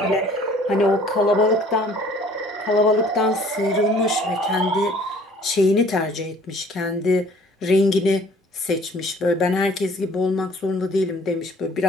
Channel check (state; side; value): normal; both; correlation 0.54